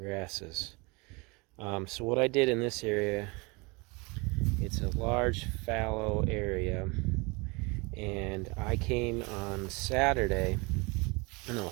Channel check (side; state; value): left; quieter; 27.7 dB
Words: So what I did in this area, it's a large fallow area, and I came on Sunday